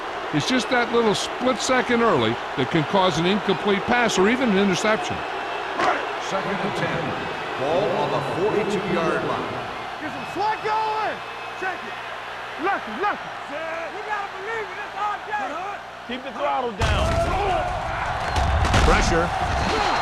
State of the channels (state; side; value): identical; both; correlation 1.00